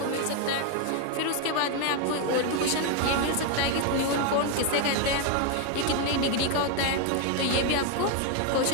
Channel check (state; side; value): different; both; correlation 0.01